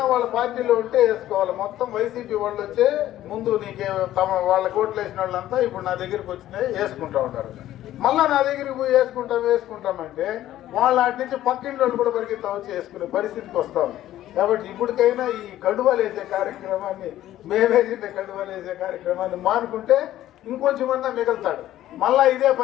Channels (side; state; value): right; quieter; 13.5 dB